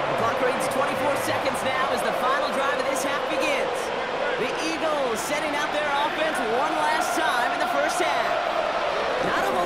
The clock reads 24 seconds now as the final drive of this half begins. The Eagles setting out their offense one last time in the 1st half. Not a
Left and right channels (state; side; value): noise; left; rumble, 27 dB below the sound